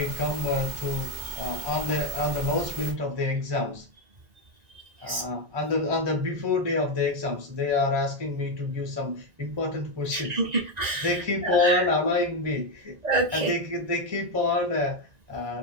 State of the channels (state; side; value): late; left; 1.9 ms